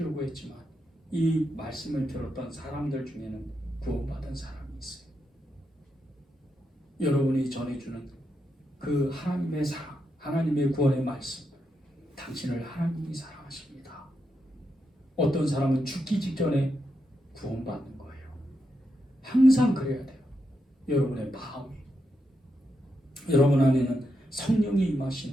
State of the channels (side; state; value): both; normal; correlation 0.84